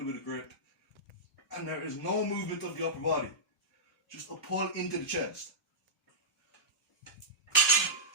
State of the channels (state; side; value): normal; both; correlation -0.13